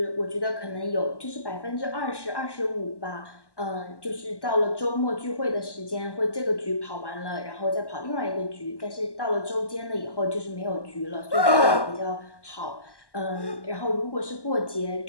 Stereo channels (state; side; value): late; right; 1.1 ms